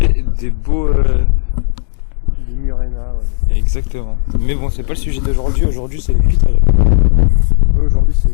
des beaux... Des Murena, ouais. Exactement. Mais bon, c'est pas le sujet d'aujourd'hui. Aujourd'hui, c'est les cutéreux. Aujourd'hui, c'est les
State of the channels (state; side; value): silent; right; digital silence